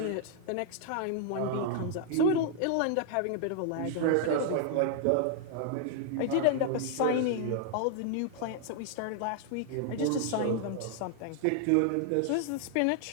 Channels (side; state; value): both; different; correlation 0.00